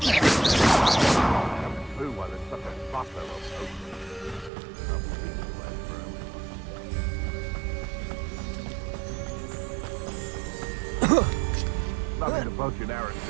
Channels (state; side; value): drops out; left; at 4.5 s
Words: Nothing to poach an